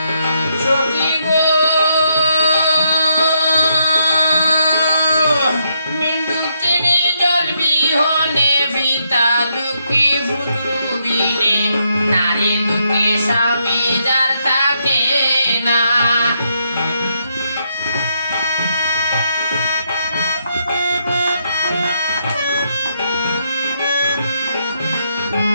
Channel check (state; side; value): inverted; both; correlation -0.77